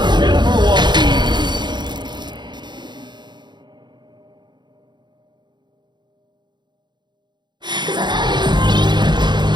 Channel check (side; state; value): left; late; 0.21 ms